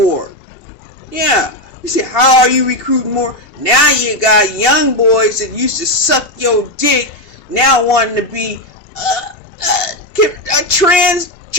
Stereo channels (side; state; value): right; late; 2.7 ms